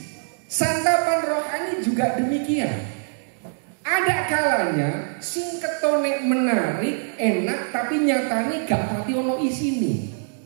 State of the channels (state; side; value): silent; left; digital silence